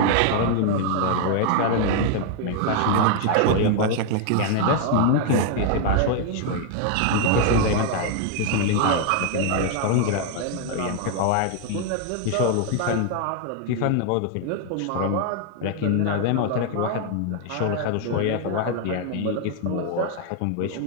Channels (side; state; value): both; different; correlation 0.00